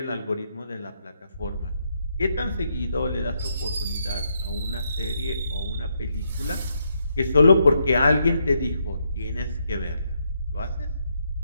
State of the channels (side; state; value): both; inverted; correlation -0.78